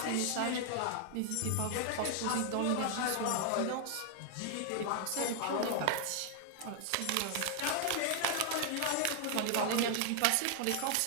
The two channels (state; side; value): different; both; correlation 0.00